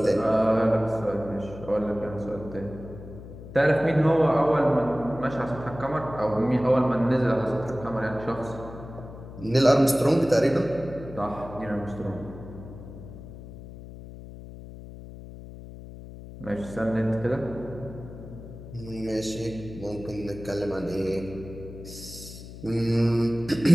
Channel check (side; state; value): left; noise; hum, 14 dB below the sound